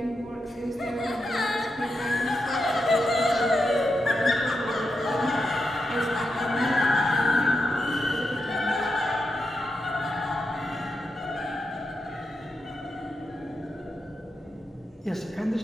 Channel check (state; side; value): normal; both; correlation 0.86